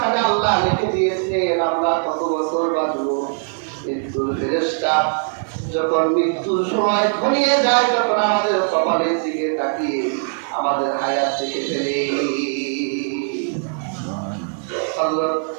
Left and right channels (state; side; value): silent; left; digital silence